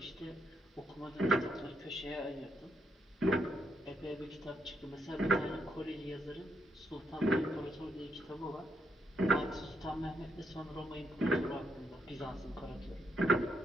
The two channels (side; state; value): both; normal; correlation 0.78